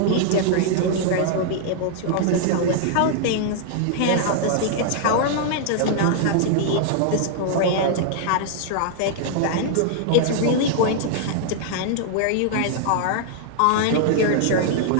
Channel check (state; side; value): different; both; correlation -0.01